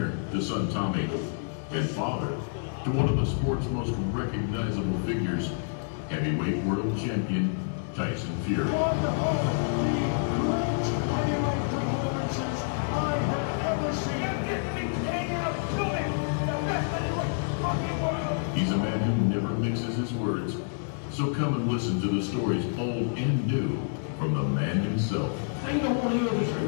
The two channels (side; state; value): right; silent; digital silence